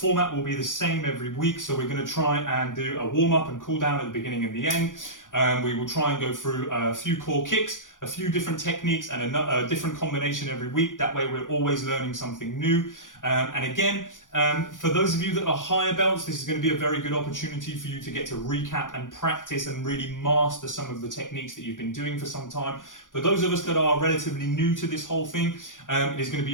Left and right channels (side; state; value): right; late; 0.88 ms